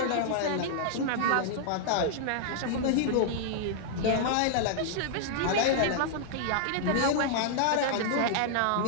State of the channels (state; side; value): different; both; correlation -0.01